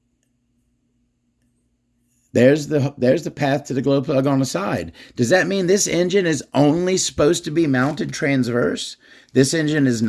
There's the path to the glow plug on the side. Does that mean this engine is only supposed to be mounted transverse? This engine is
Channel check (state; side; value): identical; both; correlation 1.00